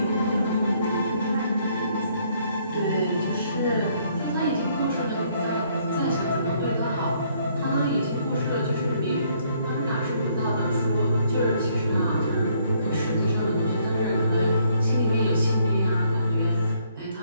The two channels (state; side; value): inverted; both; correlation -0.67